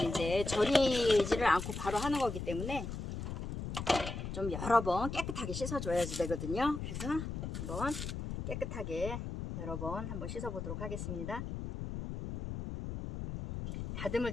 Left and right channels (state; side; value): noise; left; rumble, 6 dB below the sound